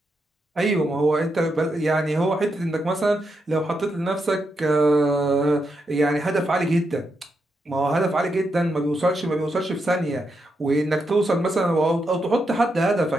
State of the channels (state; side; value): normal; both; correlation 0.83